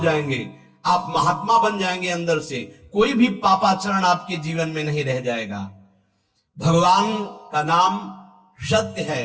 आप महात्मा बन जाएंगे अंदर से, कोई भी पापाचरण आपके जीवन में नहीं रह जाएगा। भगवान का नाम सत्य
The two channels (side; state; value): both; identical; correlation 1.00